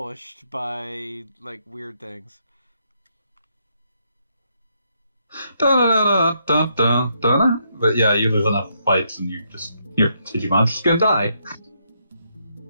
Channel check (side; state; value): both; inverted; correlation -0.76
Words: by, like, weird things. But yeah, you lose enough fights and your Digimon's just gonna die.